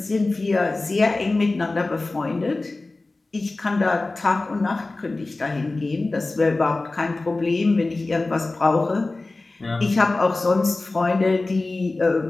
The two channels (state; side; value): quieter; right; 3.2 dB